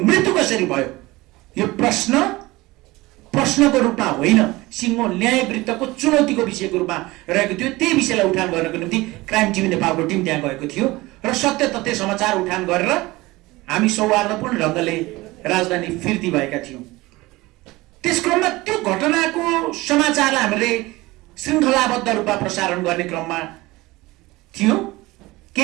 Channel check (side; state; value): left; quieter; 20.4 dB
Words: कसरी भयो? यो प्रश्नको रूपमा होइन, सिङ्गो न्यायवृत्तको चुनौतीको विषयको रूपमा रहेको थियो। त्यही विषयलाई उठान गर्नको निम्ति क्राइम टिभी नेपालको टिम त्यहाँ गएको थियो र सत्य तथ्य समाचार उठान गरेर हामी सौहार्दपूर्ण ढङ्गले राजधानी फिर्ती भएका थियौँ। त्यस क्रममा त्यो घटनाको समाचारलाई हामीले श्रृङ्खलाबद्ध रूपमा प्रसारण गर्ने क्रममा थियौँ।